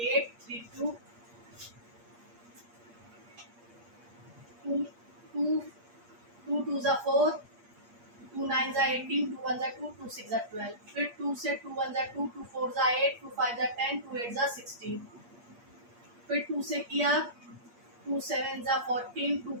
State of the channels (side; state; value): left; late; 8.5 ms